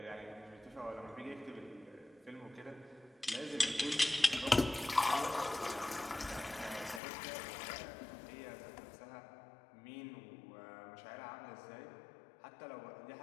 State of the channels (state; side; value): drops out; right; at 7.0 s